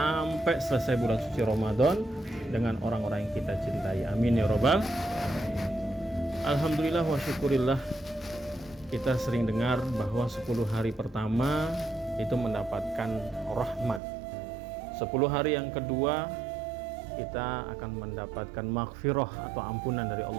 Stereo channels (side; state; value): left; drops out; at 14.0 s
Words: selesai bulan suci Ramadan dengan orang-orang yang kita cintai. Amin ya robbal. Alhamdulillah wa syukurillah, kita sering dengar bahwa 10 hari pertama itu mendapatkan rahmat. 10 hari yang kedua kita akan mendapatkan maghfirah atau ampunan dari